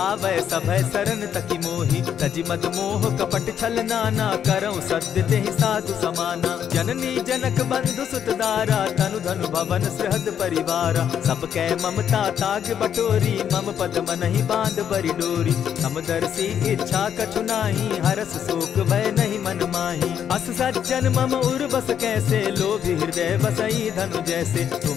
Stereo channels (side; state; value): right; quieter; 8.8 dB